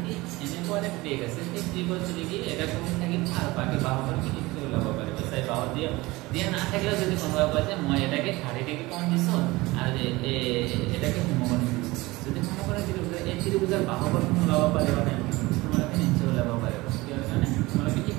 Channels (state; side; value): quieter; left; 21.1 dB